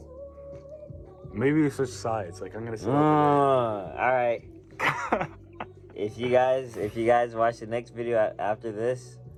Maybe we switch sides. Like I'm gonna say. All right. If you guys watch the next video after this,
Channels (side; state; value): both; identical; correlation 1.00